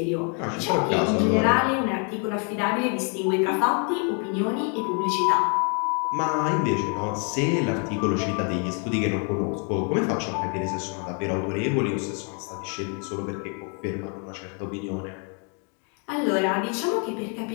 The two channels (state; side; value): quieter; right; 38.6 dB